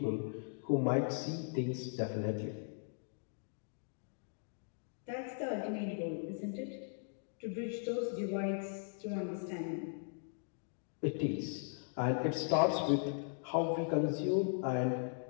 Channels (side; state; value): right; silent; digital silence